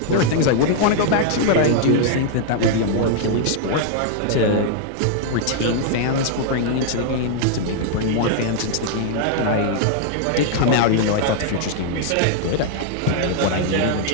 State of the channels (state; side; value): different; both; correlation -0.01